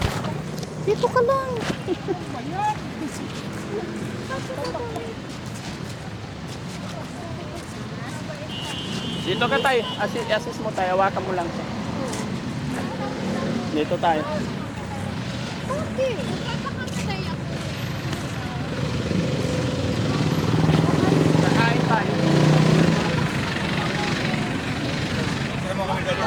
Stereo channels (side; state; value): both; identical; correlation 1.00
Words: Dito ka lang. Dito ka tayo. Assist mo tayo. Hawakan mo lang siya. Dito tayo. Okay. Magpapakamatay ako. Kakain tayo. Pero kami